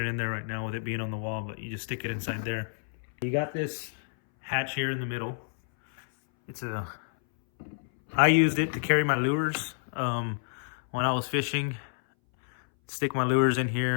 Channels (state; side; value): silent; right; 59 dB below the other